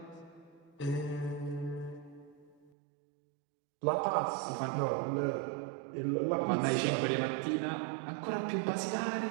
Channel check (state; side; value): drops out; left; at 2.7 s